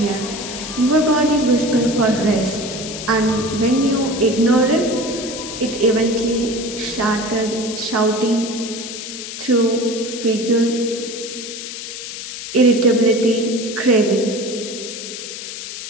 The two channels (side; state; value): left; noise; hiss, 9 dB below the sound